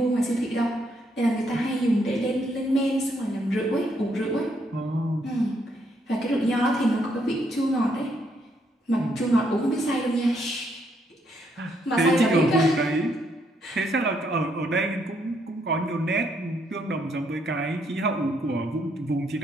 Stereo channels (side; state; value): both; normal; correlation 0.73